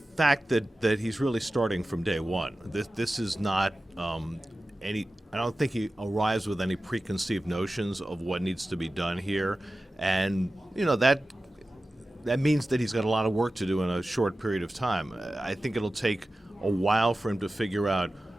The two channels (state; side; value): normal; both; correlation 0.95